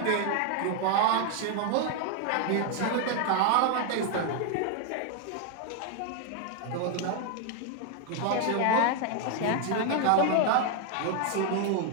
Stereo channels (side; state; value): both; different; correlation 0.01